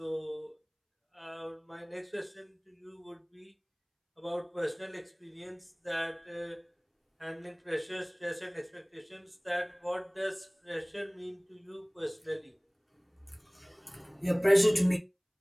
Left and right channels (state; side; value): identical; both; correlation 1.00